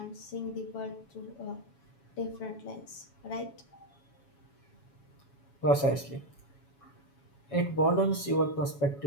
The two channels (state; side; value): late; right; 7.2 ms